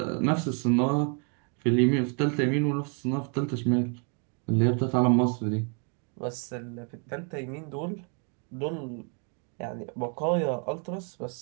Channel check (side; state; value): left; quieter; 39.7 dB